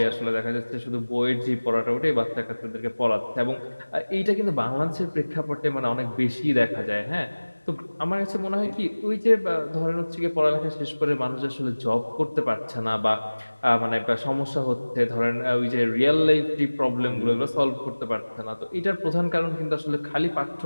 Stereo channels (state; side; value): inverted; both; correlation -1.00